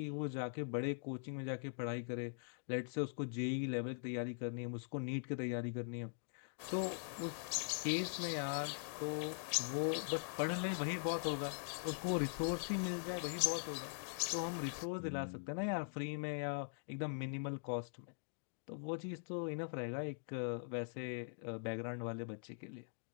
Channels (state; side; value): silent; right; digital silence